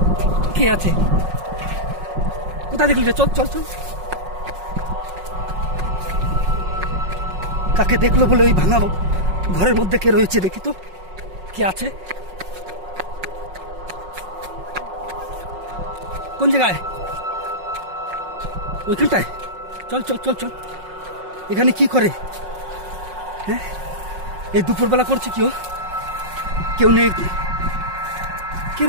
কে আছে? কোথায় দেখলি রে? চল চল চল। কাকে দেখলো বলে ওই ভাঙা ঘরের মধ্যে কে রয়েছে দেখি তো, কে আছে? কোন জায়গায়? ওইখানটায়? চল চল চল চল। এখানে কি করে? হ্যাঁ, এই দুপুরবেলা করছে কি? ও কেউ নেই? কে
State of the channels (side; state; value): left; late; 5.5 ms